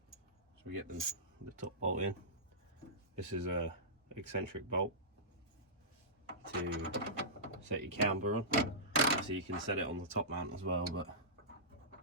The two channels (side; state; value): both; normal; correlation -0.18